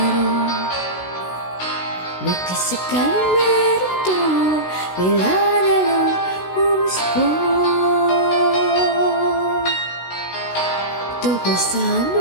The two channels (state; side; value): late; right; 16 ms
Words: Bakit sakaling meron to, bigla na lang umuspo. Tungkol saan